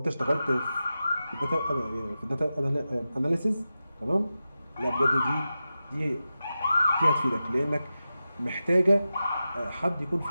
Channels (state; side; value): inverted; both; correlation -0.92